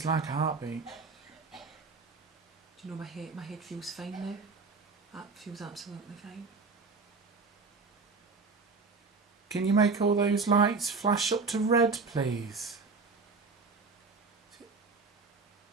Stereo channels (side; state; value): left; quieter; 4.3 dB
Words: like a heartbeat. Do you know my head feels fine now? That feels absolutely fine. Can you make all those lights flash up to red, please?